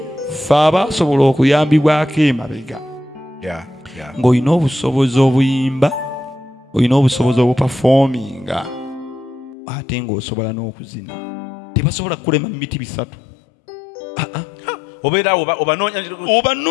ffe abasobola okuyambibwako emabega ng'olina obusobozi obuyimba olina obusobozi obupafominga ate ng'osobola n'okuzina tebasobola kukulema miti 3 obeera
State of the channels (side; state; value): right; drops out; at 9.6 s